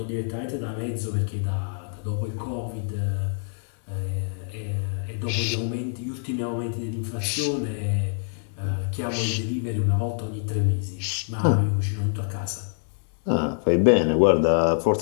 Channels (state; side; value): silent; right; 61 dB below the other